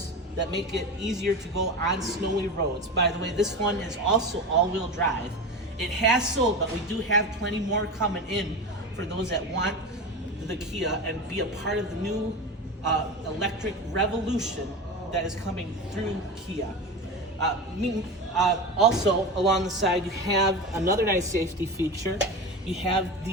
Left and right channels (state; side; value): normal; both; correlation 0.25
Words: that make it easier to go on snowy roads. By the way, this one is also all-wheel drive. It has sold, but we do have plenty more coming in for those that want the Kia and be a part of the new electric revolution that is coming through Kia. Also, along the side, you have another nice safety feature. You have